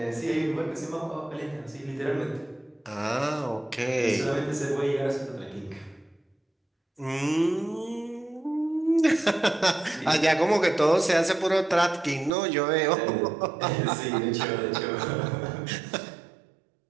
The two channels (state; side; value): drops out; left; at 12.3 s